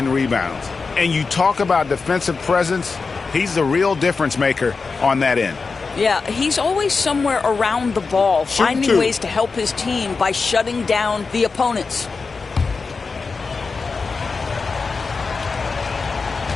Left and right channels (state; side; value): quieter; right; 4.5 dB